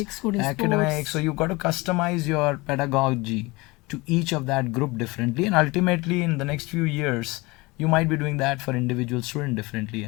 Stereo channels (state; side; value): quieter; right; 23.7 dB